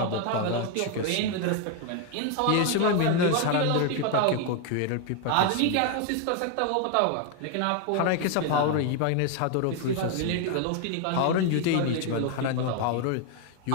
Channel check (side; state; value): both; different; correlation 0.01